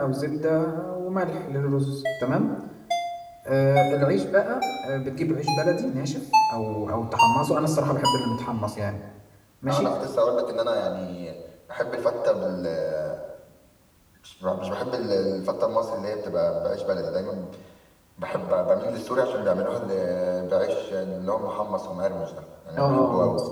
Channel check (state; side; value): identical; both; correlation 1.00